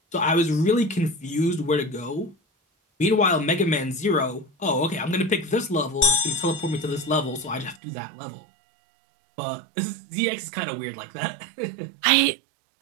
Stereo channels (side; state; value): left; drops out; at 7.8 s